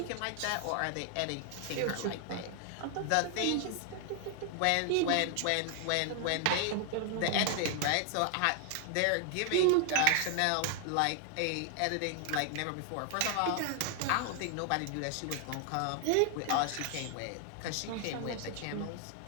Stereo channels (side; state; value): both; different; correlation 0.00